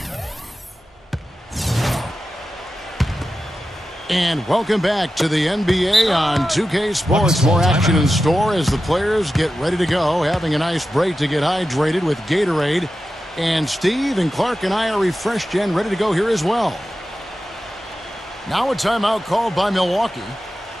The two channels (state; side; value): normal; both; correlation 0.92